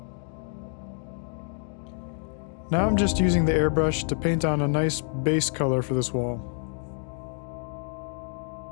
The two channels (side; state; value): right; silent; 60 dB below the other